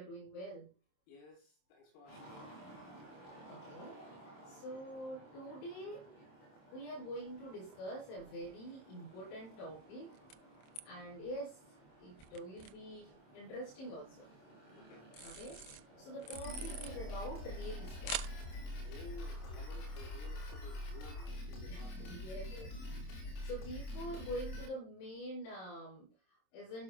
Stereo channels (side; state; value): right; late; 27 ms